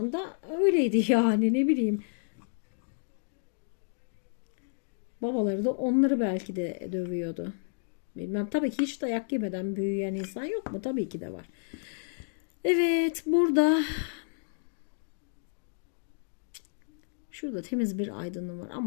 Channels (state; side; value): silent; right; digital silence